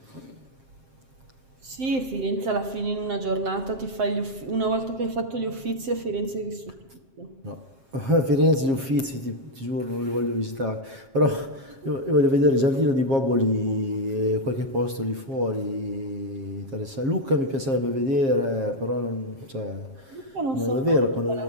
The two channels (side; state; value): left; late; 7.4 ms